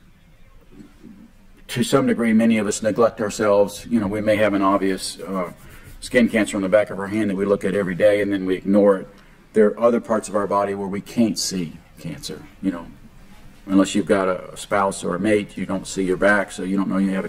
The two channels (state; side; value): identical; both; correlation 1.00